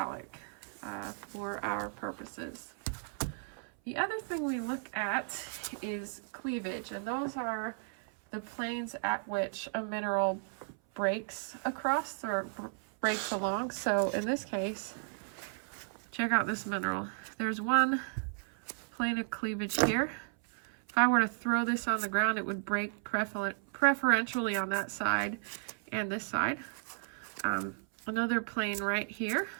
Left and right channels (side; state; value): left; silent; 55 dB below the other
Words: for our purposes. The other thing we look at is cleavage, and those are the planes at which a mineral breaks across or breaks along. So in this case, check out this mineral. There's one plane of cleavage here. If I were to throw this on the ground, it would break preferentially on that side and this side. Another plane right here